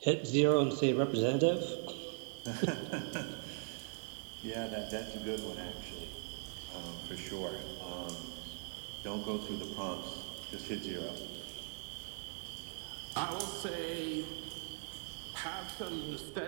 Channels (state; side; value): silent; left; 51 dB below the other